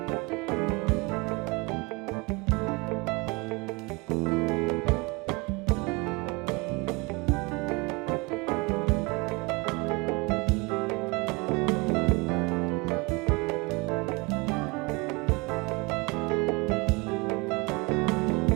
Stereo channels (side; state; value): left; quieter; 26.7 dB